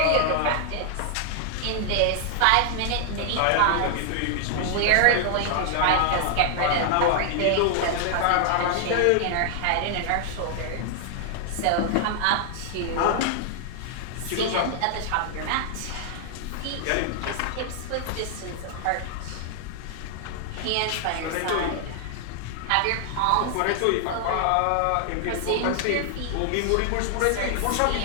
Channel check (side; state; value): both; different; correlation 0.00